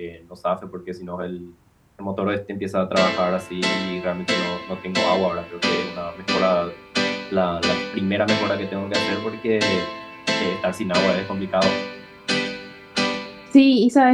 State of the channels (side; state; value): both; identical; correlation 1.00